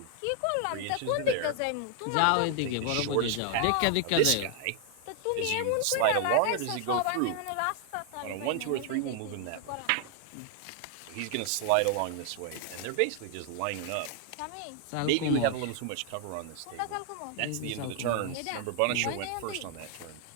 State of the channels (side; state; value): both; different; correlation 0.00